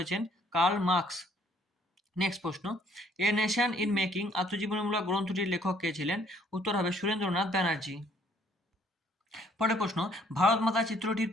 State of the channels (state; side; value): normal; both; correlation 0.63